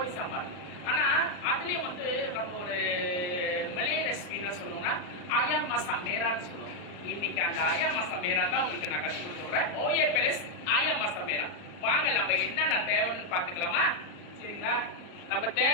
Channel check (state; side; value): late; right; 39 ms